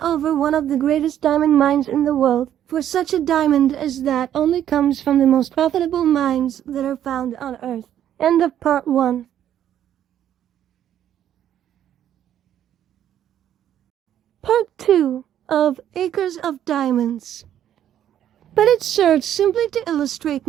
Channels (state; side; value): quieter; left; 10.7 dB